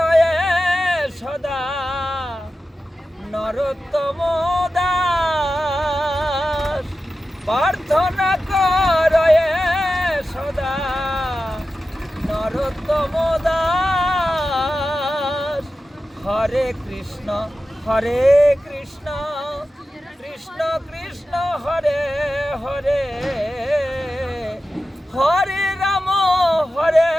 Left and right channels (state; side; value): normal; both; correlation 0.93